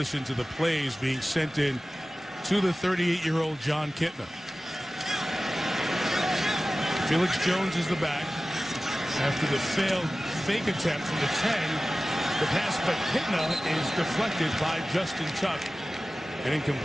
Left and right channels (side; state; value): both; normal; correlation 0.96